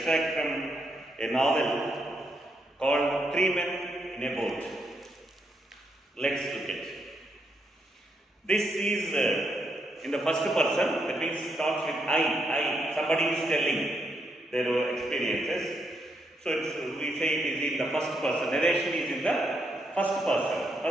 from a novel called Three Men in a Boat. Let's look at it. This is in the first person, that means starts with I. Somebody is telling their experiences. So we say it is in the first person. Narration is in the first person.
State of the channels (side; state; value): both; normal; correlation 0.78